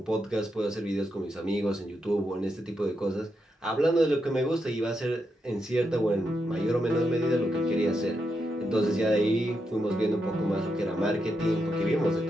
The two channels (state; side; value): normal; both; correlation 0.84